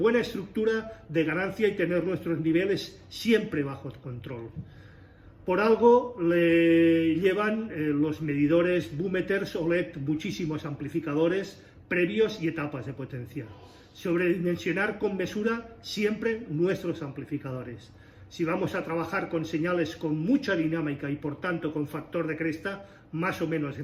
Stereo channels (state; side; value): identical; both; correlation 1.00